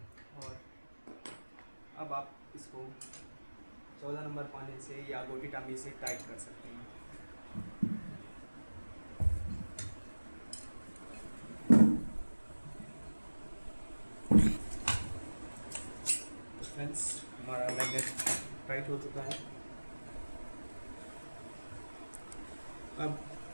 अब आप इसको 14 नंबर पाने से या गोटी टामी से टाइट कर सकते हैं। फ्रेंड्स, हमारा मैग्नेट टाइट हो चुका है। अब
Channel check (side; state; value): both; inverted; correlation -1.00